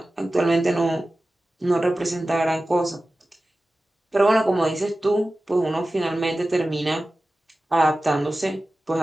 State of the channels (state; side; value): normal; both; correlation 0.95